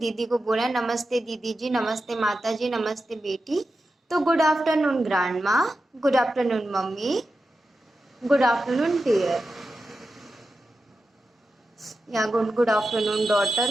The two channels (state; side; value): normal; both; correlation 0.91